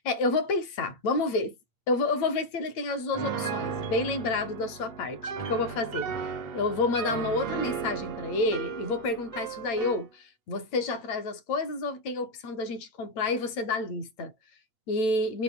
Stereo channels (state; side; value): late; right; 8.6 ms